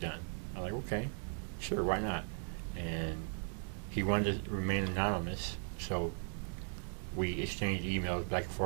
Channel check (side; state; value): left; silent; 53 dB below the other